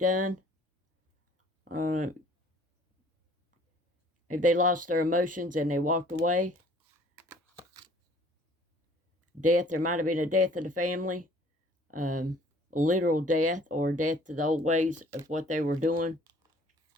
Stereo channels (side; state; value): both; normal; correlation 0.55